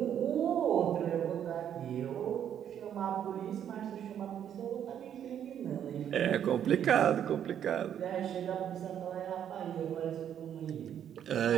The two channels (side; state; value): left; quieter; 9.5 dB